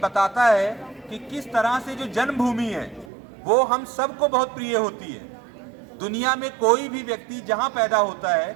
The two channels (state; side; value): drops out; left; at 3.1 s